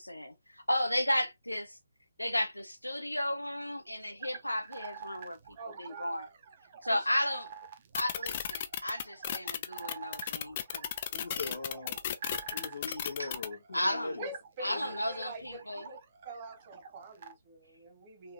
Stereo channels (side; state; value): both; inverted; correlation -0.86